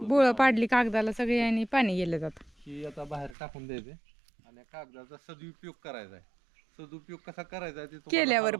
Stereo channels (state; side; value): drops out; left; at 3.4 s